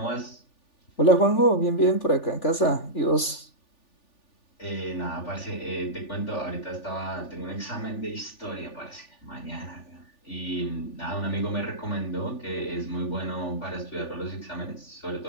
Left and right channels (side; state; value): right; late; 3.4 ms